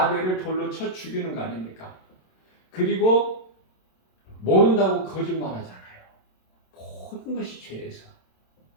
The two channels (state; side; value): late; right; 27 ms